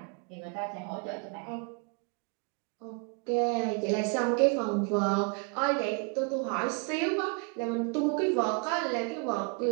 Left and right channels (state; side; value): quieter; left; 35.4 dB